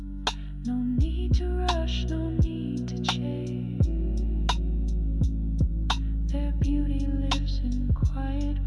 No need to rush, no need to chase. Their beauty lives in quiet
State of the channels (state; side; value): identical; both; correlation 1.00